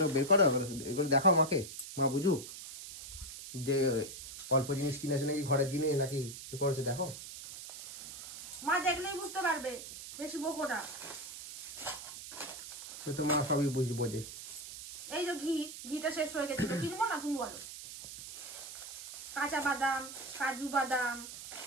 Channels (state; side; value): noise; right; hiss, 11 dB below the sound